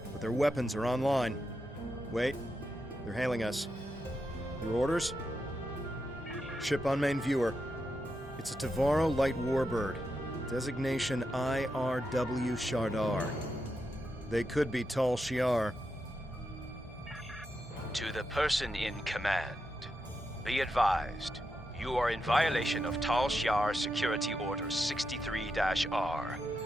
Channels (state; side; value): normal; both; correlation 0.86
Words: but their weapons are online. Wait, they're hailing us. Your orders? Ship on main viewer. It's a Tavaro light warbird. Designation IRW Shardar. They could be Tal Shiar. To the person in command, be advised, you are in violation of Tal Shiar Security Order 63-R.